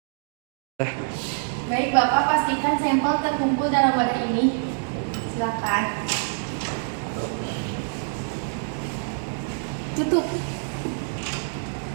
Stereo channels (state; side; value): silent; left; digital silence